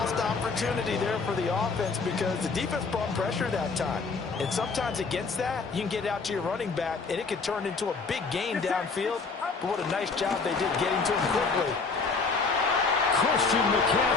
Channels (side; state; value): right; quieter; 4.5 dB